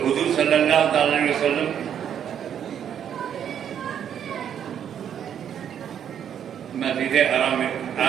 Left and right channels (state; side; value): quieter; left; 9.0 dB